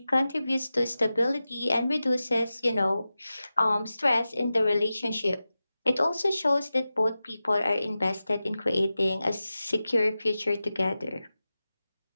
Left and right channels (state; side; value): inverted; both; correlation -0.94